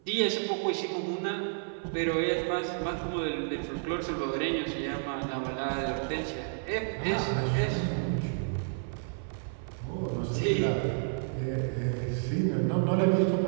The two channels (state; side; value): silent; left; 56 dB below the other